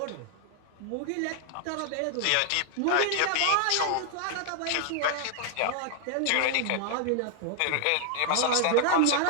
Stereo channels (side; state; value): both; different; correlation 0.00